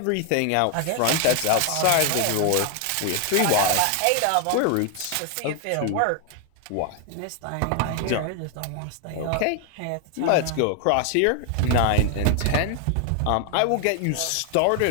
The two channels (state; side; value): different; both; correlation 0.00